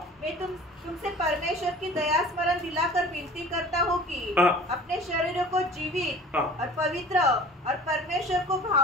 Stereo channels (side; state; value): both; normal; correlation 0.43